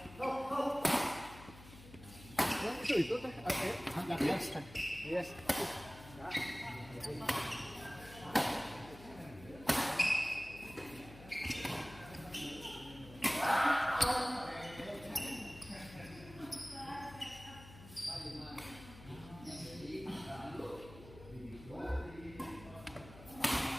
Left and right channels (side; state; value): left; noise; hum, 17 dB below the sound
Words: Itu teh agak biasa. Yes.